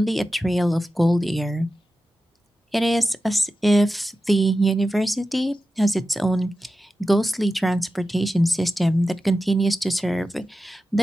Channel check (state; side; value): normal; both; correlation 0.92